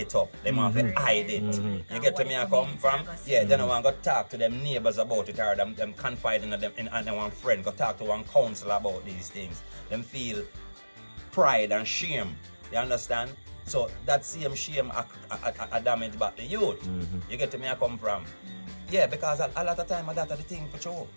up. They want to hide it. You get to me I come from? Yeah, they don't want to go talk to them neighbors about it or them confide in them and one friend, go talk to one counselor about these things. Them feel pride and shame. You understand? So that same shame a damage back the youth. You get to me I come from? Yeah, because a lot of time that's the thing for sure.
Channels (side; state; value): both; inverted; correlation -1.00